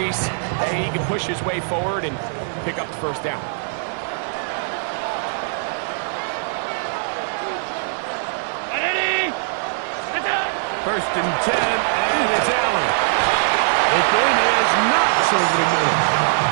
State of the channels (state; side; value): silent; left; 65 dB below the other